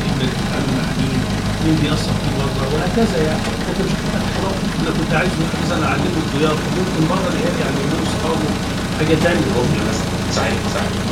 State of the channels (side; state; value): both; identical; correlation 1.00